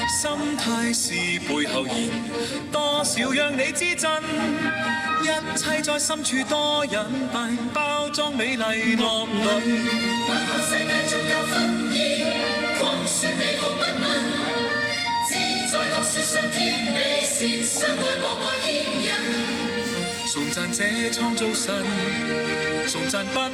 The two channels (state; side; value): identical; both; correlation 1.00